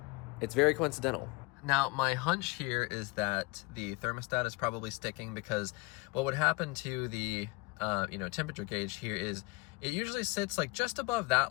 it's very coincidental. Now, my hunch here is that the thermostat is probably sticking, because what would happen to the temperature gauge here is it usually sits like just above that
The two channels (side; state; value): right; quieter; 25.5 dB